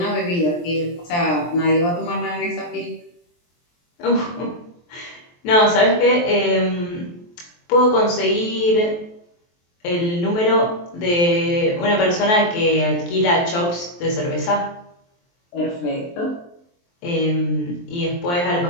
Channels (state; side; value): late; right; 23 ms